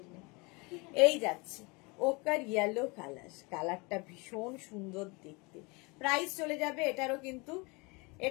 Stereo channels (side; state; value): right; quieter; 27.8 dB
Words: এই যাচ্ছে ওকার ইয়েলো কালার, কালারটা ভীষণ সুন্দর দেখতে। প্রাইস চলে যাবে এটারও, কিন্তু